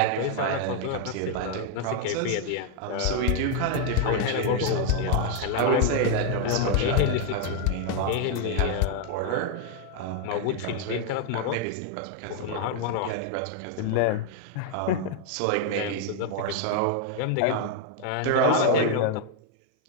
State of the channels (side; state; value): both; different; correlation 0.01